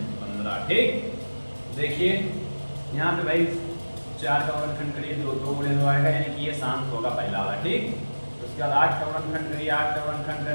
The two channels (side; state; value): both; inverted; correlation -1.00